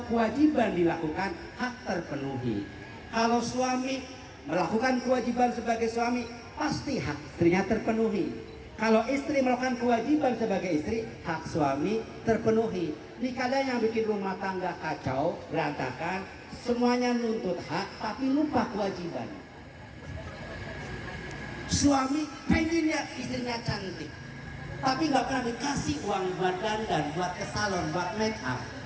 kewajiban dilakukan, hak terpenuhi. Kalau suami melakukan kewajiban sebagai suami, pasti hak istrinya terpenuhi. Kalau istri melakukan kewajiban sebagai istri, hak suami terpenuhi. Ini kadang yang bikin rumah tangga kacau, berantakan, semuanya nuntut hak tapi lupa kewajiban. Suami pengen lihat istrinya cantik, tapi nggak pernah dikasih uang buat dandan, buat ke salon, buat make up.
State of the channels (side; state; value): both; identical; correlation 1.00